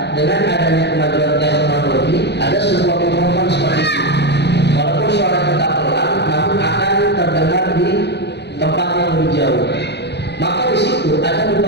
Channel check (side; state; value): right; late; 0.50 ms